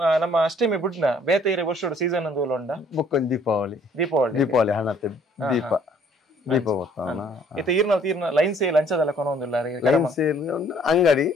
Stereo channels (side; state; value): both; normal; correlation 0.60